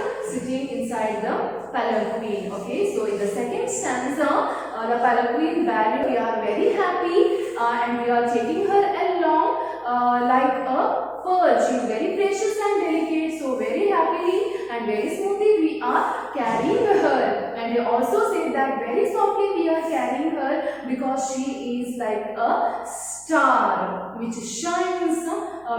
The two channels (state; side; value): noise; right; hum, 30 dB below the sound